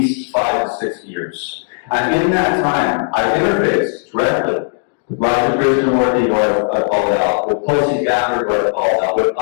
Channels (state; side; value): silent; right; digital silence